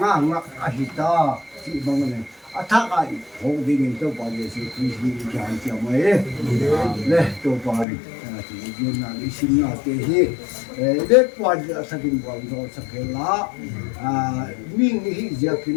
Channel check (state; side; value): drops out; right; at 7.9 s